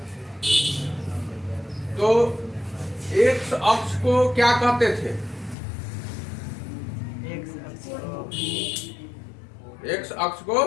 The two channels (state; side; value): drops out; right; at 5.6 s